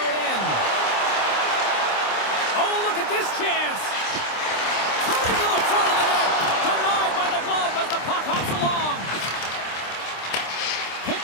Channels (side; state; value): right; late; 26 ms